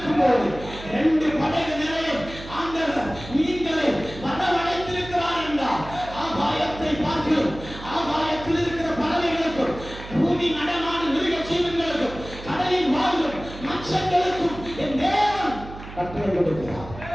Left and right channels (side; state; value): right; noise; hum, 13 dB below the sound